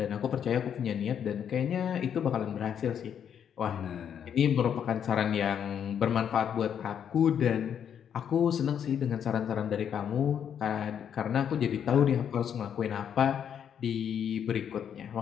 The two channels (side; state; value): right; quieter; 8.5 dB